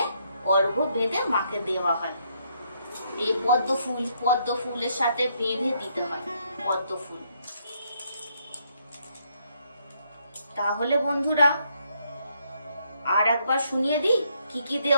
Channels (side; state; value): both; inverted; correlation -0.73